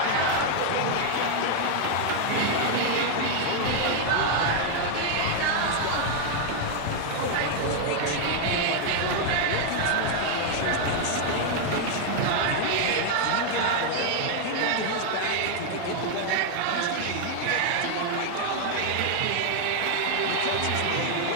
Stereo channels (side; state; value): both; different; correlation 0.00